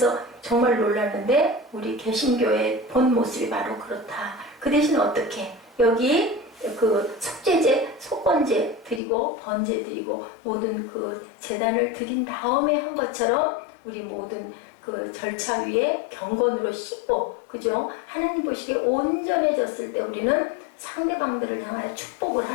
정말 놀랐는데 우리 개신교의 본 모습이 바로 그렇다. 그 대신 어떻게? 여기 그 속죄제, 속건제 드리고 번제 드리고 모든 그 제단을 드린 다음에 한 것처럼 우리 모든 그 절차 위에 경건으로 씻고, 그죠? 하나님 보시기에 온전해졌을 때 우리는 상대방들을 향하여 축복을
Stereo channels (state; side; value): drops out; right; at 9.0 s